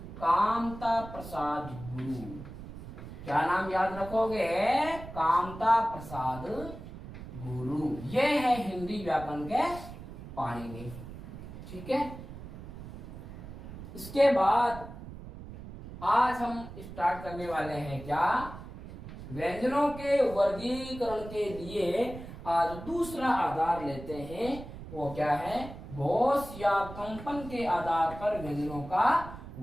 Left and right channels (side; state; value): right; noise; rumble, 13 dB below the sound